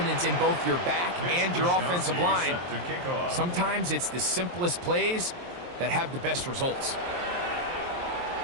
in both your back and your offensive line, sometimes it's the simplest plays that have the best results.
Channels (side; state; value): left; late; 23 ms